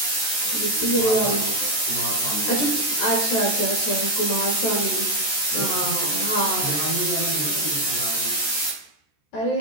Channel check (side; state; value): right; late; 14 ms